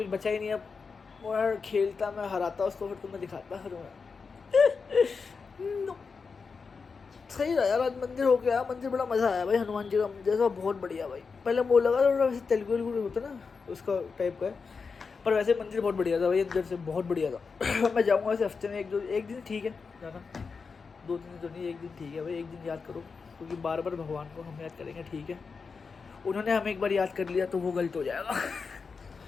बचा ही नहीं। अब वो यार खेलता मैं हराता उसको, फिर तुम्हें दिखाता फिर मैं। सही रहा यार, आज मंदिर हो गया, मंदिर बड़ा मज़ा आया भाई। हनुमान जी का मंदिर था, बहुत बढ़िया भाई। पहले वो लगा थोड़ा वैसे तेलुगु होता ना उसका टाइप का है, पर वैसे मंदिर बहुत बढ़िया था भाई, अंदर से बहुत बढ़िया था। मैं जाऊँगा वैसे हफ्ते में एक दिन ठीक है जाना, 2 दिन तो नहीं, 1 दिन ठीक है भाई। 1 दिन याद करो, क्योंकि बार बार भगवान को हम याद करेंगे, ठीक है? उन्होंने हमें एक बार याद कर लिया तो वो गलत हो जाएगा।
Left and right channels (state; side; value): quieter; right; 5.1 dB